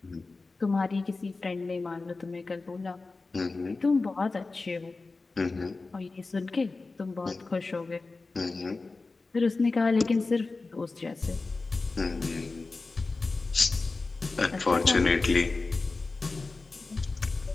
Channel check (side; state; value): right; quieter; 3.7 dB